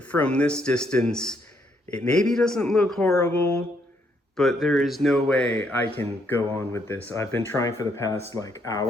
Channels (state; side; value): normal; both; correlation 0.73